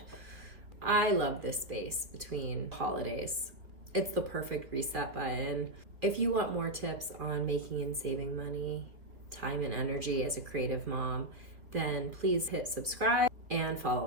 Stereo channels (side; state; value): left; late; 2.2 ms